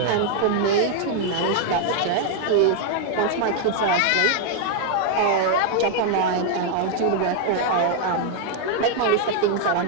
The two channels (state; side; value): different; both; correlation 0.00